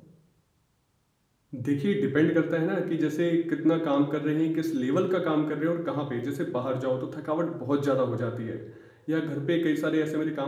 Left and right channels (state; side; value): identical; both; correlation 1.00